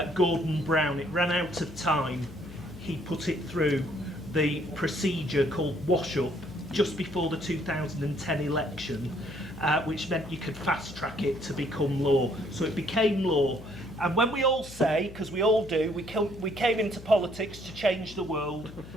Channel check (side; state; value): left; noise; hum, 16 dB below the sound